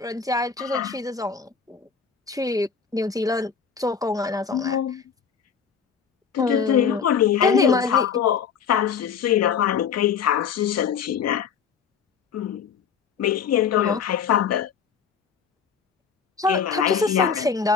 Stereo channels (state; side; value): quieter; right; 6.7 dB